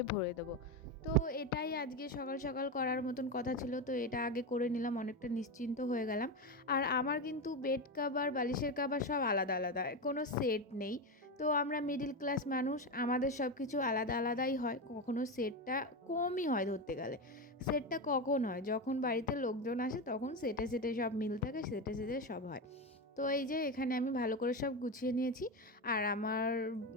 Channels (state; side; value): normal; both; correlation 0.15